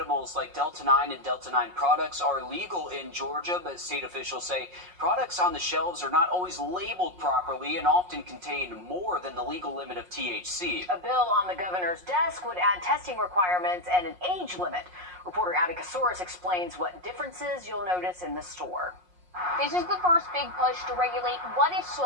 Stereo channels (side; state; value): left; late; 5.5 ms